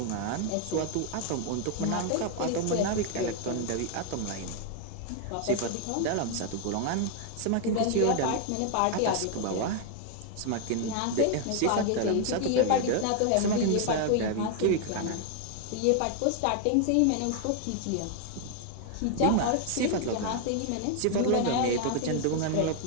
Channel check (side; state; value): both; different; correlation 0.00